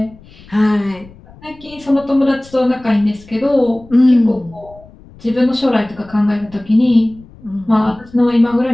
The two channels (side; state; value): left; noise; rumble, 23 dB below the sound